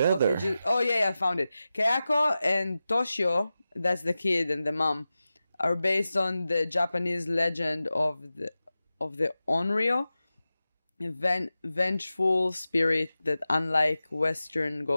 Okay, I found it. Kayako and Toshio, that's the kid and the mom, are based on the Japanese legend of the Onryo, a vengeful spirit that, unlike Western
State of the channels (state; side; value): inverted; both; correlation -0.94